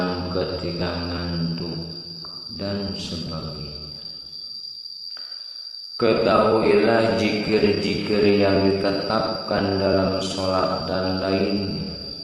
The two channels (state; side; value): identical; both; correlation 1.00